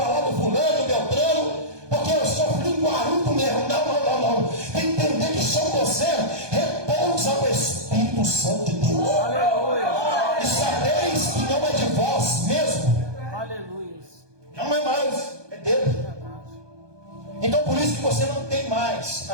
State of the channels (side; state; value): left; late; 1.2 ms